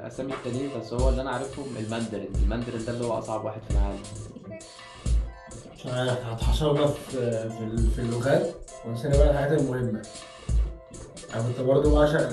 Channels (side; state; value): both; identical; correlation 1.00